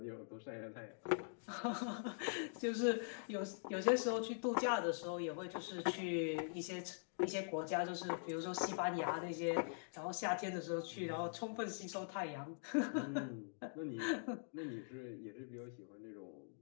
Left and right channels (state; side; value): silent; right; digital silence